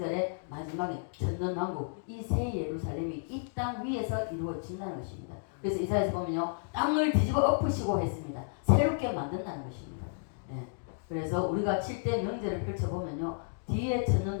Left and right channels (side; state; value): right; silent; digital silence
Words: 마지막인 천년왕국, 이 새 예루살렘이 이 땅 위에서 이루어진다는 것입니다. 그래서 이사야서 보면요, 땅을 뒤집어 엎으시고 했습니다. 새롭게 만든다는 것입니다. 예. 그래서 우리가 7대 명절을 펼쳐보면요, 뒤에